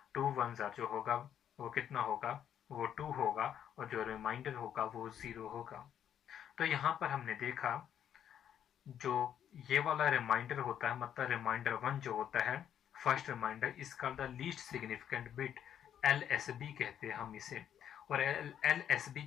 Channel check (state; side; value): quieter; right; 9.6 dB